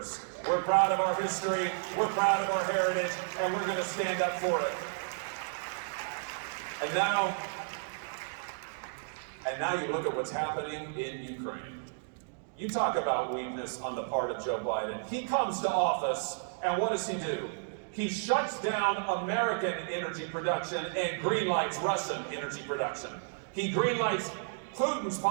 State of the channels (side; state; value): left; silent; digital silence